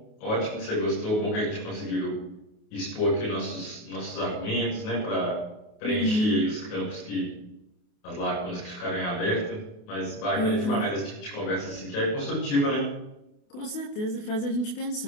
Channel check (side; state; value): right; late; 28 ms